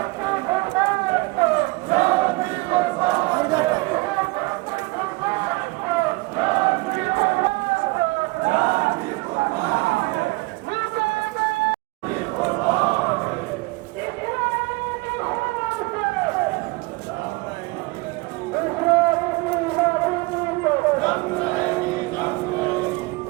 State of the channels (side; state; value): left; quieter; 24.3 dB